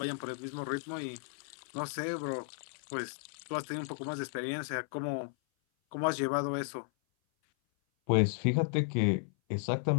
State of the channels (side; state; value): right; silent; 55 dB below the other